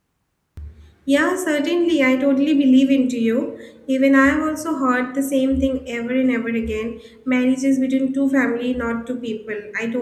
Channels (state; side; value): identical; both; correlation 1.00